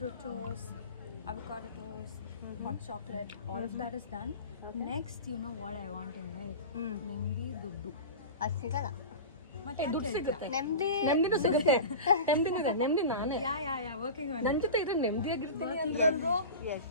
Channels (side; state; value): both; inverted; correlation -0.31